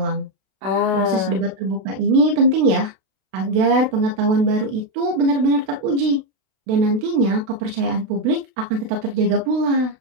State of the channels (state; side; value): late; left; 32 ms